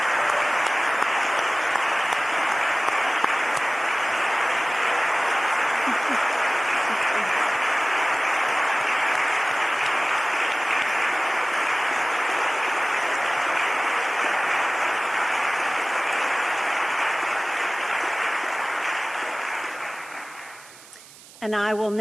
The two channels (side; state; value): right; noise; hiss, 21 dB below the sound